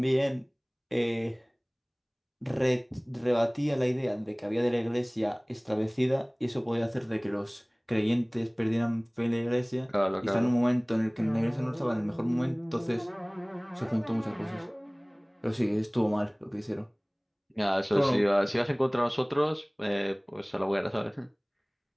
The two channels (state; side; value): identical; both; correlation 1.00